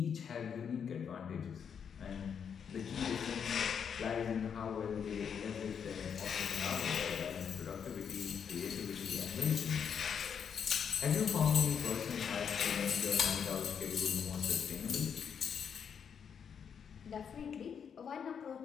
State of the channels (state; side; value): quieter; right; 7.3 dB